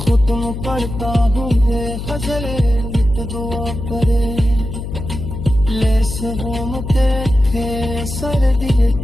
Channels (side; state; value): left; noise; hum, 7 dB below the sound